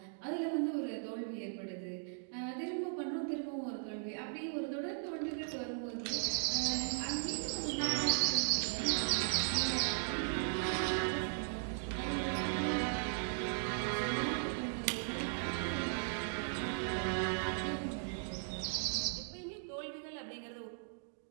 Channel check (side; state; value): left; silent; digital silence